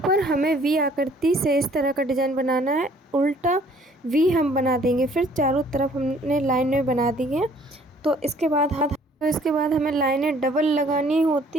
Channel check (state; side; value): normal; both; correlation 0.58